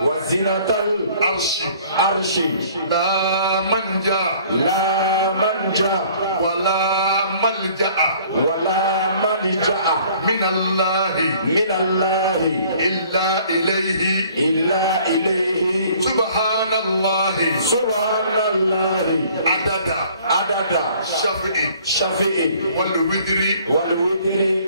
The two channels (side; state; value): both; inverted; correlation -0.55